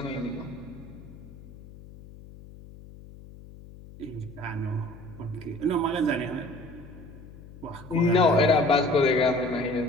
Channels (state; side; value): noise; left; hum, 18 dB below the sound